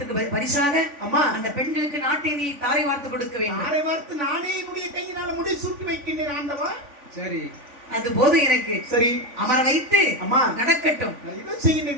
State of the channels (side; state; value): left; late; 3.5 ms